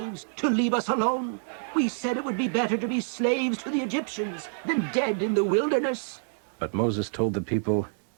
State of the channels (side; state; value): left; silent; digital silence